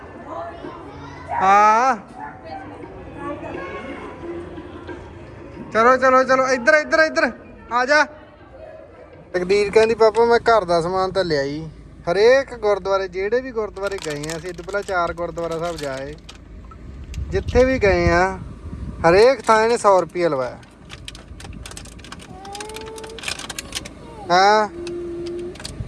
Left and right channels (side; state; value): both; identical; correlation 1.00